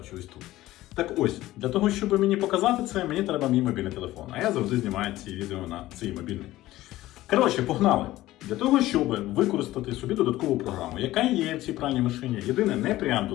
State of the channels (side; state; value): right; quieter; 16.1 dB